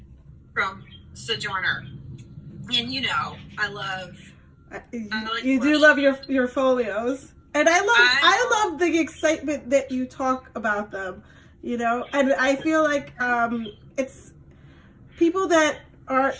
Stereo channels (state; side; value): identical; both; correlation 1.00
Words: From Sojourner. And I love you do love your folios. And I love the excitement that you talk about them. And I feel like it's people that are